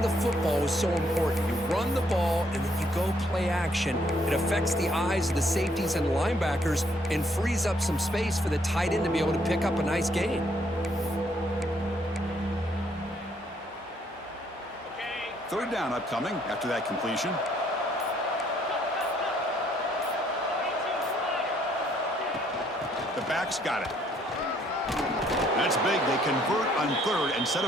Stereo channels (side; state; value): both; normal; correlation 0.68